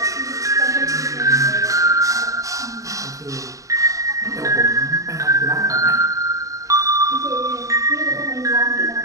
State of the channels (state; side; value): late; left; 0.16 ms